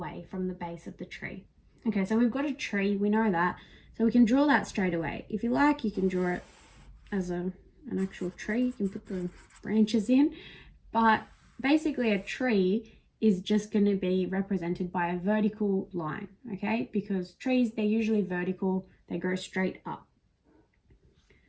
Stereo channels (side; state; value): both; identical; correlation 1.00